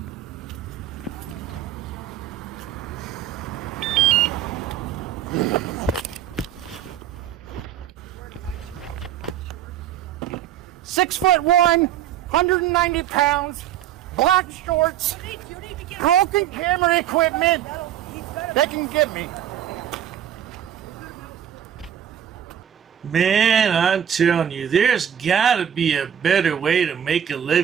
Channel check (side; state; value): left; quieter; 10.1 dB